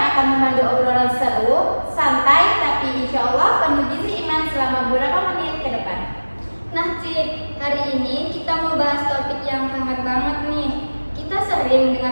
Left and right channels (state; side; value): inverted; both; correlation -1.00